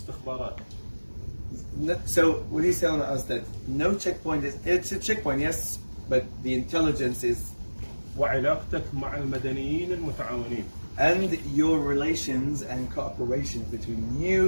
So what he's telling us that no checkpoint it's a checkpoint, yes, but the intelligence is. وعلاقتك مع المدنيين المتعاونين. And your relations and cooperation between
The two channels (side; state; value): both; inverted; correlation -1.00